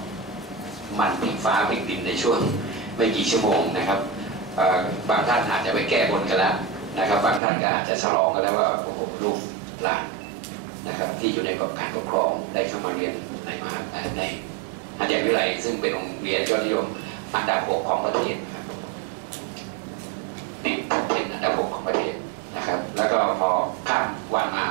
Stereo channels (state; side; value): drops out; left; at 7.4 s